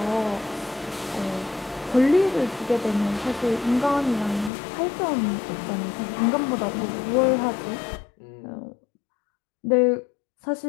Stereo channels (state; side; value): drops out; right; at 4.5 s